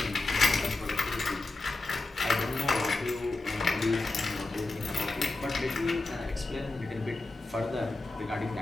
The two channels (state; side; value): quieter; right; 3.2 dB